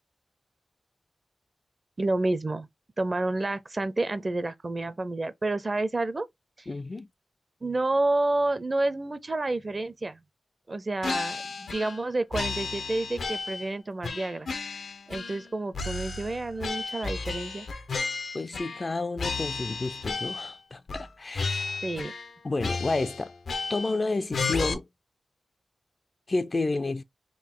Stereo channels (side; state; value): both; normal; correlation 0.93